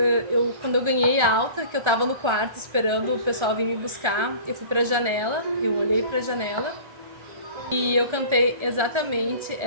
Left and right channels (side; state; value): left; late; 1.4 ms